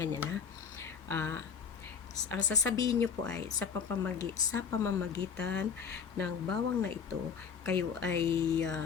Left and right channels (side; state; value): right; quieter; 6.5 dB